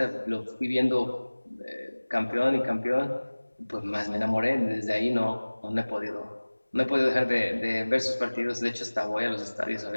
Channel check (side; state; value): both; inverted; correlation -1.00